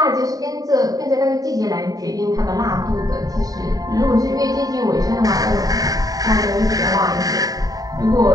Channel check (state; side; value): late; left; 0.18 ms